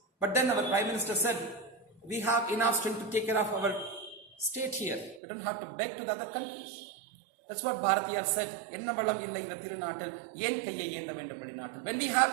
But then our Prime Minister said, we have enough strength to take care of our state here. We don't have to beg to the other countries. That's what Bharatiyar said. Enna valam illa indha thirunaatil yen kaiyai yenda vendum vadinaatil. When we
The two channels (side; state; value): left; drops out; at 5.2 s